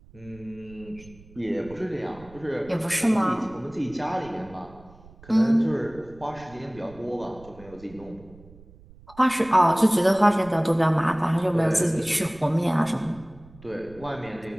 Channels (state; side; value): noise; right; rumble, 22 dB below the sound